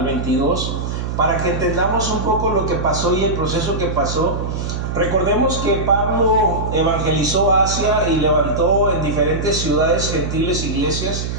22, para que entendamos un poco lo que pasó y el proceso que pasó. Recordemos que Pablo evangelizó Asia y levantó en diferentes ciudades gentiles iglesias.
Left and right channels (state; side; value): noise; right; hum, 4 dB below the sound